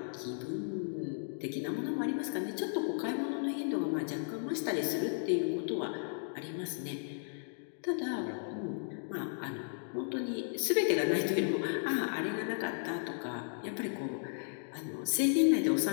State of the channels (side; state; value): right; silent; digital silence